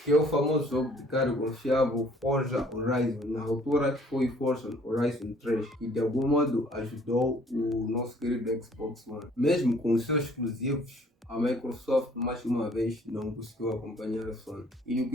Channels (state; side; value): normal; both; correlation 0.58